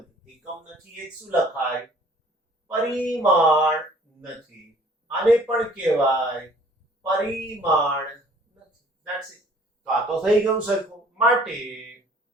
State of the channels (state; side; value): normal; both; correlation 0.55